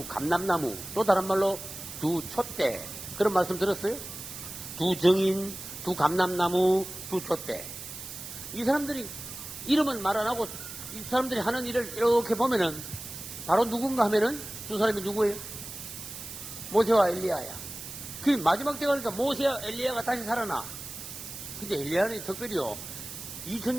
감람나무, 또 다른 말로 두 촛대, 그런 말씀 들었어요? 두 증인, 두 감람나무, 두 촛대. 이 사람들이 이름은 말 안 하고 이 사람들이 하는 일을 이렇게 보면은 바로 누군가 하면은 두 사람이 누구예요? 모세와 엘리야야. 그 마지막 때 가니까 모세와 엘리야가 다시 살아나. 근데 엘리야는 특별히요.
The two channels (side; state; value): right; noise; hiss, 11 dB below the sound